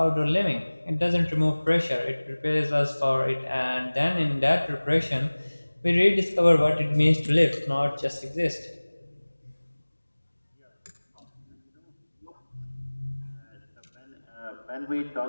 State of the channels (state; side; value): inverted; both; correlation -1.00